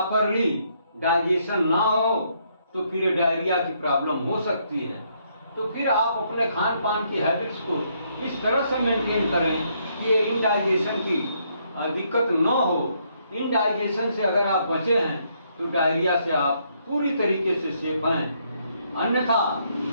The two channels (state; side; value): inverted; both; correlation -0.72